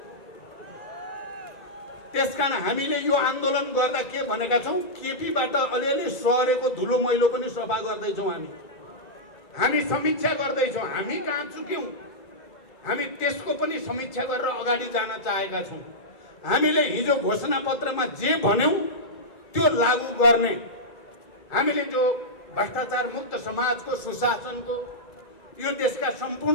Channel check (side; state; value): right; late; 2.3 ms